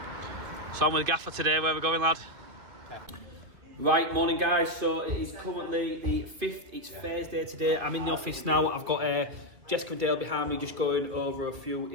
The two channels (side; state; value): left; late; 2.6 ms